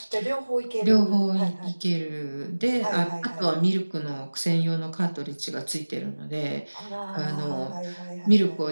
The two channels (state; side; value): inverted; both; correlation -1.00